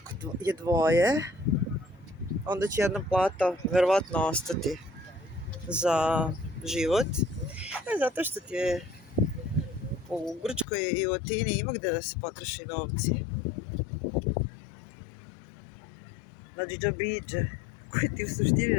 je dvoje, onda će jedna plata verovatno ostati za život. Zato što ti je u Grčkoj i u Atini ima gde da se potroši novci. Znači džabriđe, koji ti u suštini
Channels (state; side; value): drops out; right; at 10.7 s